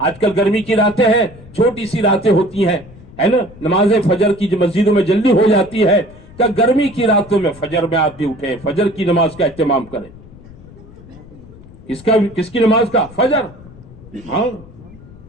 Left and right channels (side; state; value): left; noise; rumble, 20 dB below the sound